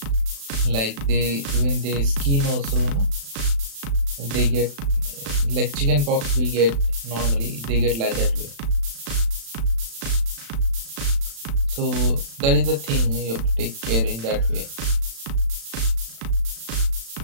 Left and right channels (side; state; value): left; late; 36 ms